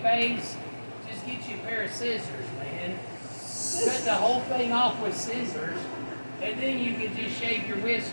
phase, just get you a pair of scissors, man. Cut the whole thing off with scissors, and then you can just shave your whiskers.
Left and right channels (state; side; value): inverted; both; correlation -1.00